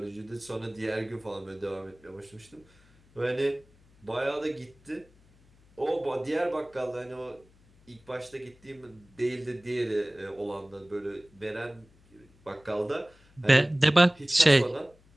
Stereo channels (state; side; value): noise; left; hum, 29 dB below the sound